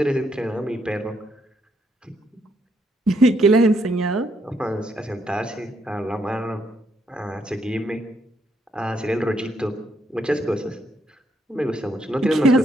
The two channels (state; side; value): normal; both; correlation 0.74